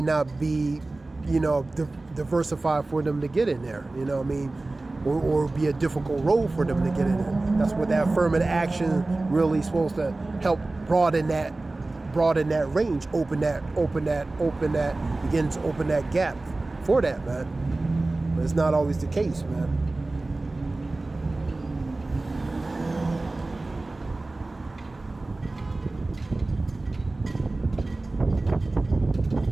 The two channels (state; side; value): quieter; left; 3.1 dB